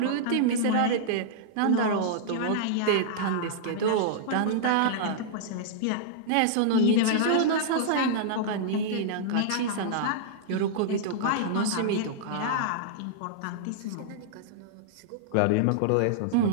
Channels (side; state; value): both; different; correlation -0.02